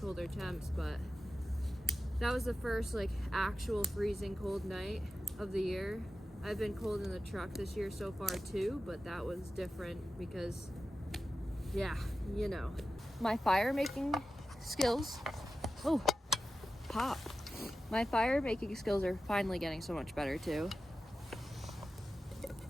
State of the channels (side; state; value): both; normal; correlation 0.93